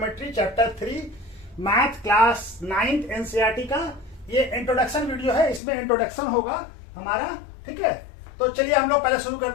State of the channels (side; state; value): right; drops out; at 5.6 s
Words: chapter 3 math class 9th NCERT का। ये इंट्रोडक्शन वीडियो है, इसमें इंट्रोडक्शन होगा हमारा। ठीक है, तो चलिए हम लोग पहले शुरू